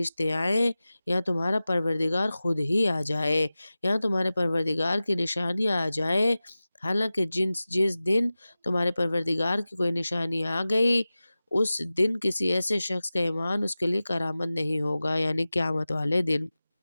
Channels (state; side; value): inverted; both; correlation -0.96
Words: آئیں یا تمہارا پروردگار خود ہی آ جائے یا تمہارے پروردگار کی نشانیاں آ جائیں، حالانکہ جس دن تمہارے پروردگار کی کوئی نشانی آ گئی اس دن کسی ایسے شخص کا ایمان اس کے لیے کرامت نہیں ہوگا، یعنی قیامت والے دن،